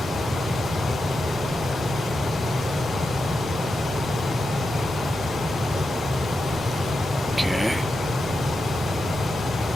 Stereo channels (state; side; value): normal; both; correlation 0.88